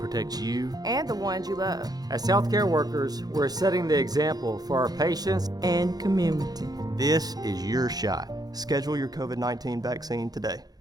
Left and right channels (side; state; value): left; late; 0.19 ms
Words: you and the ones you love. As healthcare workers, we're setting the example for our patients and community. This is your shot. Schedule your COVID-19 vaccine today.